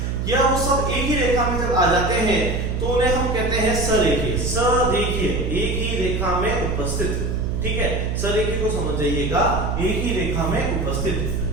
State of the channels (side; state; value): right; noise; hum, 1 dB below the sound